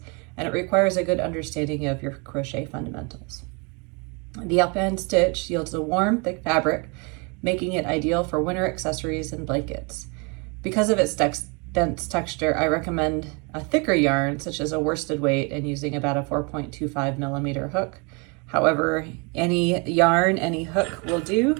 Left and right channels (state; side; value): quieter; left; 32.1 dB